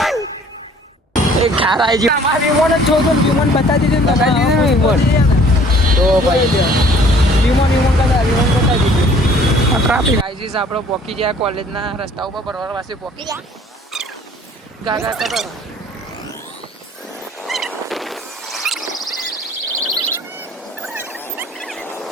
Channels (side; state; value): both; normal; correlation 0.55